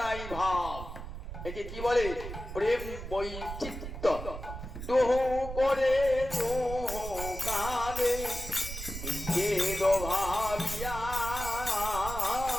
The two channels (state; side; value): noise; right; rumble, 8 dB below the sound